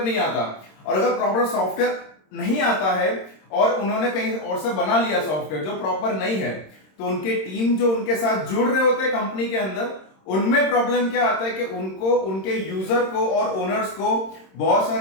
नहीं आता। और अगर प्रॉपर सॉफ्टवेयर नहीं आता है और उन्होंने कहीं और से बना लिया सॉफ्टवेयर जो प्रॉपर नहीं है, तो उनके टीम जो उनके साथ जुड़ रहे होते हैं कंपनी के अंदर, उनमें प्रॉब्लम क्या आता है कि उनको उनके यूजर को और ओनर्स को बहुत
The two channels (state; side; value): late; right; 26 ms